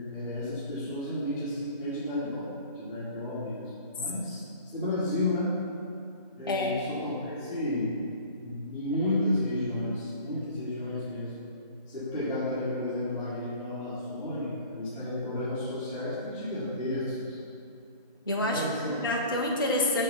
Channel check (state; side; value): inverted; both; correlation -0.43